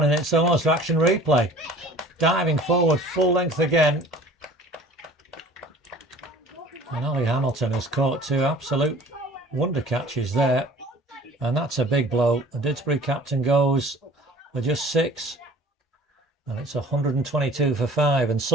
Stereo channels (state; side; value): normal; both; correlation 0.47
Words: and it's almost action replay. Diving forward, full length again. And Ollie Hamilton has caught 2 absolute wonder catches there. And that's a big blow. The Didsbury captain goes for just 6. And it's 122 for 5. And